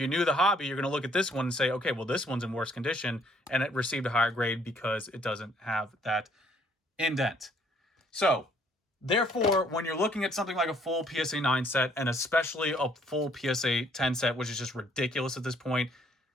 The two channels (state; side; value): normal; both; correlation 0.64